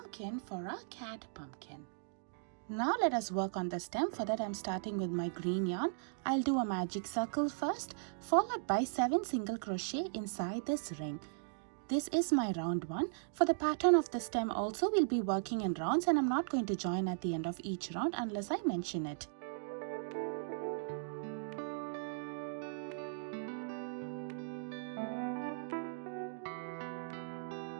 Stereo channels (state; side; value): silent; left; digital silence